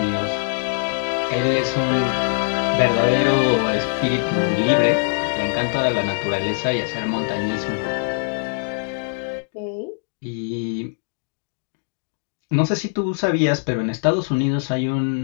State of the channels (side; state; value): right; silent; digital silence